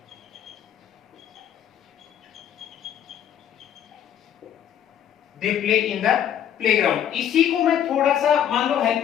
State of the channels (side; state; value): right; quieter; 9.9 dB